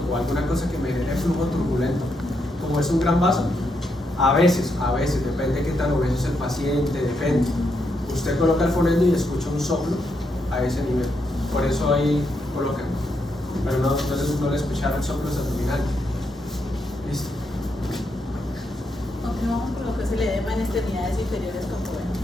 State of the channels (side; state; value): both; normal; correlation 0.80